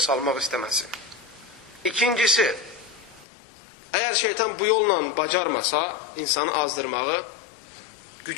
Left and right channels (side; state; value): right; drops out; at 3.2 s